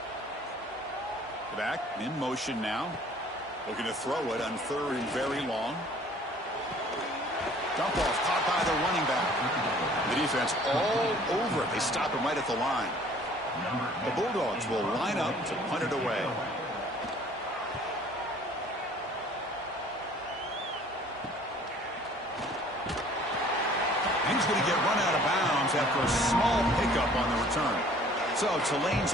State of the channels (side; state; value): both; normal; correlation 0.53